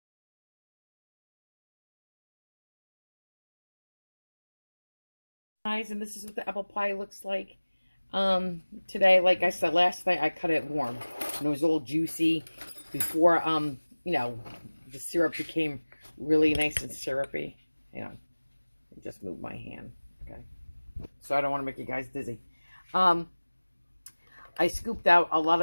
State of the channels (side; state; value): both; inverted; correlation -1.00